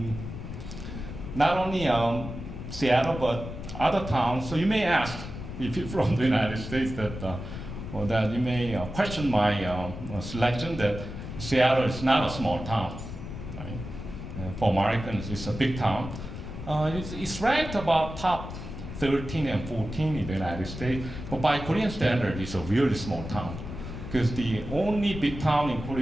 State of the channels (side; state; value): left; noise; rumble, 9 dB below the sound